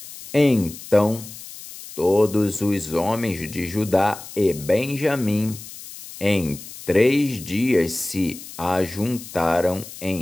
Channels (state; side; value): noise; left; hiss, 14 dB below the sound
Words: Então todos os homens de Judá e Benjamim em 3 dias se ajuntaram